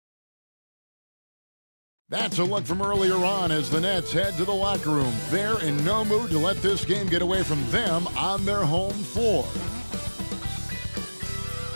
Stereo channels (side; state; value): both; inverted; correlation -1.00